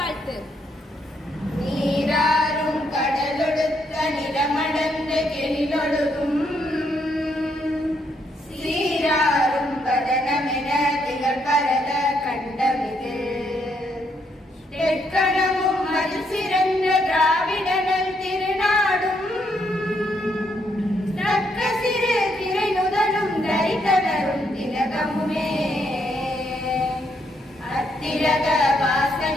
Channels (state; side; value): normal; both; correlation 0.75